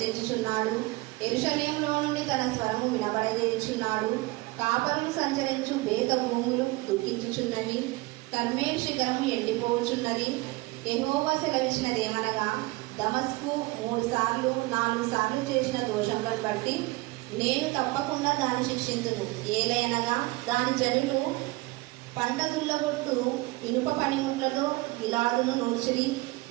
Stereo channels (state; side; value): quieter; left; 22.0 dB